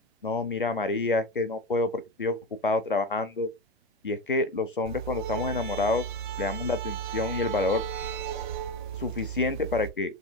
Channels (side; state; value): both; normal; correlation 0.19